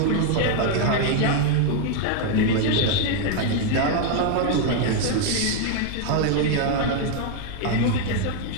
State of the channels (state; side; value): different; both; correlation 0.00